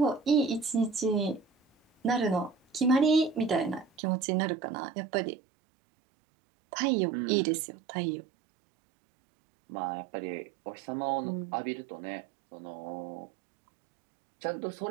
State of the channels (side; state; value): left; drops out; at 3.9 s